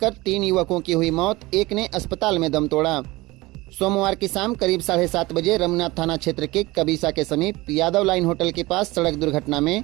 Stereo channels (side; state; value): left; quieter; 20.8 dB